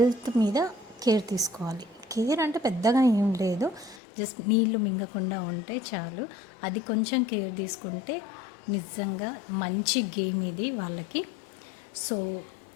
మీద కేర్ తీసుకోవాలి. కేర్ అంటే పెద్దగా ఏం లేదు, జస్ట్ నీళ్లు మింగకుండా ఉంటే చాలు. అది కొంచెం కేర్ తీసుకుంటే నిజంగా మంచి గేమ్ ఇది వాళ్ళకి. సో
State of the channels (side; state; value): right; drops out; at 4.0 s